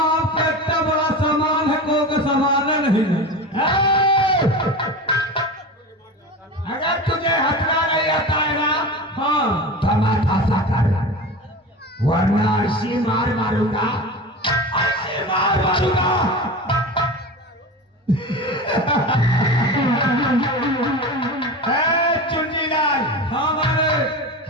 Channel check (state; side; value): normal; both; correlation 0.29